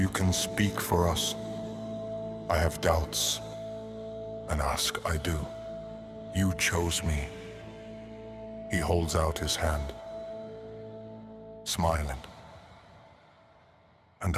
can speak for us." I have doubts, and ask I do. You chose me. He holds out his hand, smiling, and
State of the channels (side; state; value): both; identical; correlation 1.00